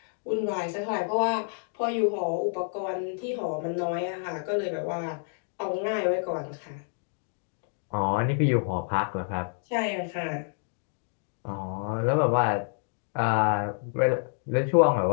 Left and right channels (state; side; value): silent; right; digital silence